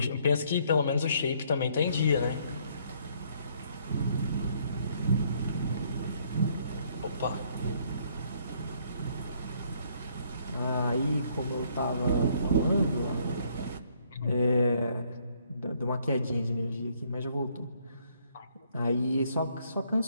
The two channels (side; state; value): both; inverted; correlation -0.67